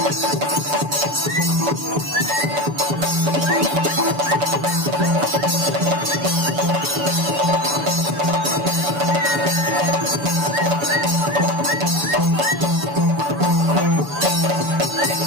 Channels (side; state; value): left; late; 6.9 ms